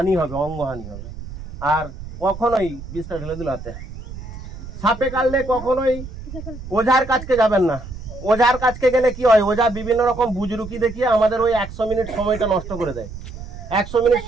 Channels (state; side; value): noise; right; rumble, 12 dB below the sound